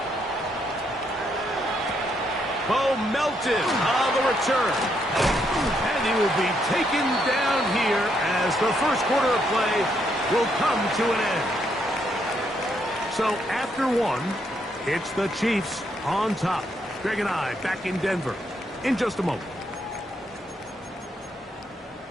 Bo Melton on the return. And he will be taken down here as the first quarter of play will come to an end. So after one, it's the Chiefs on top. Greg and I back in Denver in just a moment.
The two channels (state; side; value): normal; both; correlation 0.76